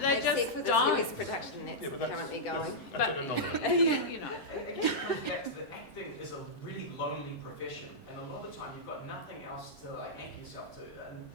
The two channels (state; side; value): late; right; 7.6 ms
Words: they just for don't. the US production that's currently going. That's an anomaly. You know. Again, it comes back to the acting is a really lonely profession, and a lot of the time you've got nothing else to like anchor yourself to